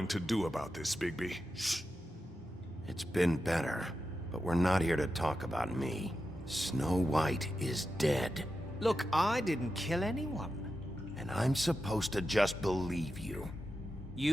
to do about this, Bigby? Shh. It's been better, but we're not here to talk about me. Snow White is dead. Look, I didn't kill anyone. And I'm supposed to just believe you.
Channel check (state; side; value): normal; both; correlation 0.90